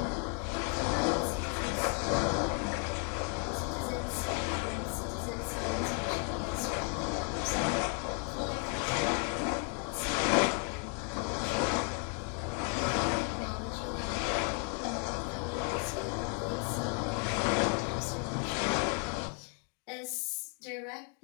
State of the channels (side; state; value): right; quieter; 39.5 dB